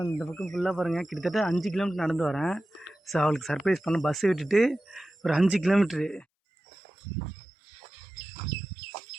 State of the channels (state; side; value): drops out; left; at 6.2 s